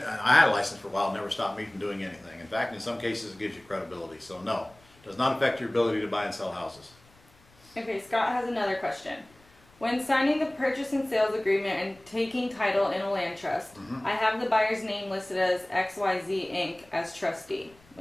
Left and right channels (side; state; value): left; noise; rumble, 28 dB below the sound